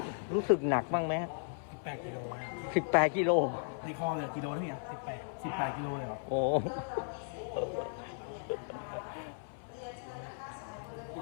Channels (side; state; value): right; silent; 54 dB below the other